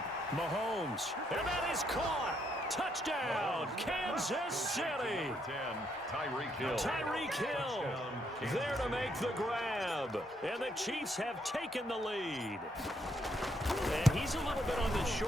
Mahomes. And that is caught. Touchdown, Kansas City. Tyreek Hill there to make the grab. And the Chiefs have taken the lead. And he's a little bit on the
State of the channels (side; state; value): both; normal; correlation 0.74